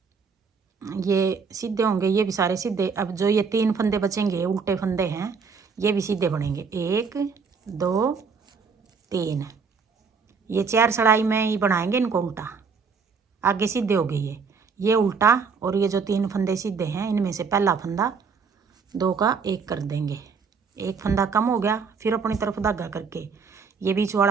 ये सीधे होंगे, ये भी सारे सीधे। अब जो ये 3 फंदे बचेंगे उल्टे फंदे हैं, ये भी सीधे बनेंगे, 1 2 3। ये 4 सड़ाई में ही बनाएंगे इनको उल्टा, आगे सीधे हो गए ये उल्टा। और ये जो 3 फंदे सीधे हैं, इनमें से पहला फंदा 2 का 1 कर देंगे, एक फंदा कम हो गया। फिर अपनी तरफ धागा करके ये बीच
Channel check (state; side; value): quieter; left; 5.5 dB